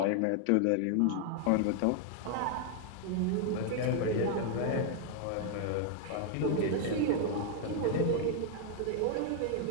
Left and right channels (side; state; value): both; different; correlation 0.00